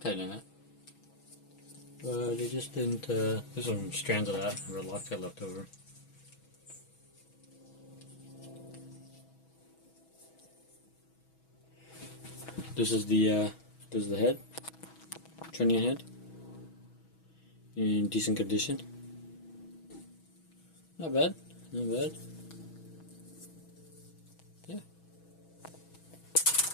in it. But it just didn't, there's some strands of that red Loctite left over. This is the head, trunnion head, in decent condition. Not bad, not bad. Yeah.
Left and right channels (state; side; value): late; right; 6.2 ms